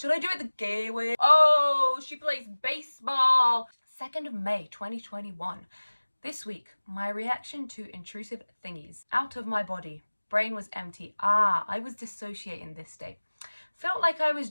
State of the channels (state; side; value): inverted; both; correlation -1.00